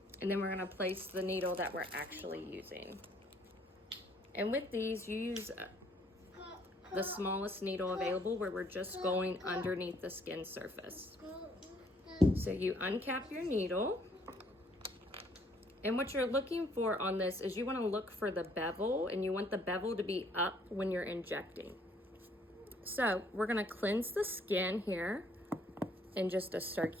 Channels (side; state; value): both; normal; correlation 0.64